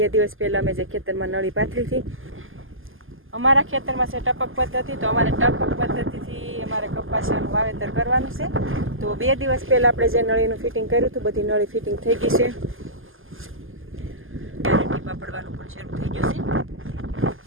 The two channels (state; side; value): late; left; 0.59 ms